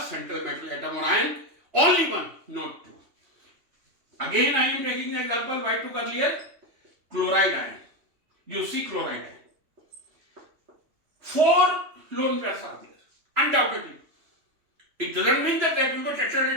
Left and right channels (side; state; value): left; late; 3.2 ms